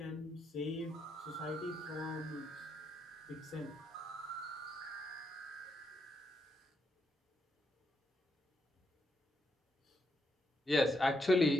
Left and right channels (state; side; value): normal; both; correlation 0.80